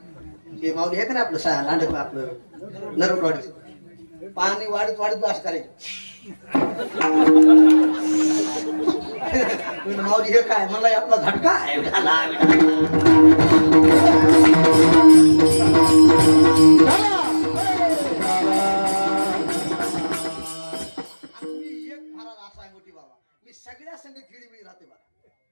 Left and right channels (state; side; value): inverted; both; correlation -1.00